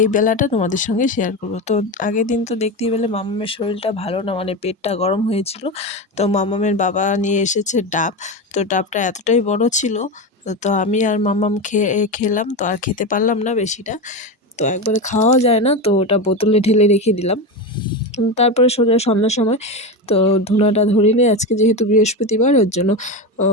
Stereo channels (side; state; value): both; normal; correlation 0.18